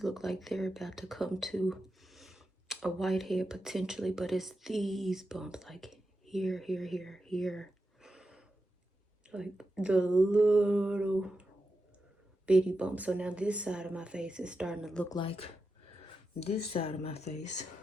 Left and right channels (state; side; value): normal; both; correlation 0.89